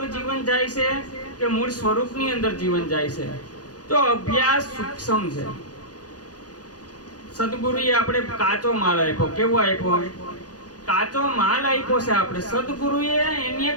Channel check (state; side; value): late; right; 0.68 ms